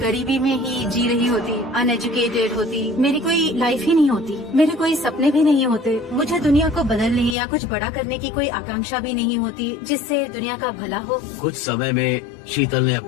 गरीबी में ही जी रही होती, अनएजुकेटेड होती, मेरी कोई लाइफ ही नहीं होती, मेरे कोई सपने भी नहीं होते, मुझे दुनिया को बदलने या कुछ बड़ा करने की कोई आकांक्षा भी नहीं होती जिससे दुनिया का भला हो। कुछ समय में शीतल ने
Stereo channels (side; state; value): right; drops out; at 7.4 s